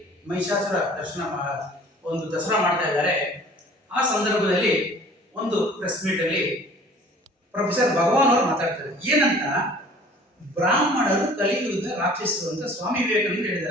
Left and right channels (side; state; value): both; normal; correlation 0.49